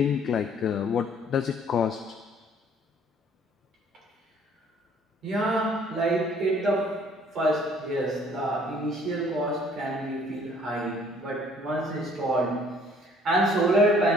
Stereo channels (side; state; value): both; normal; correlation 0.58